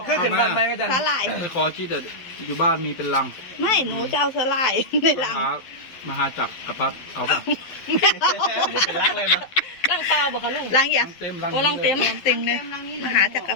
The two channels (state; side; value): late; right; 12 ms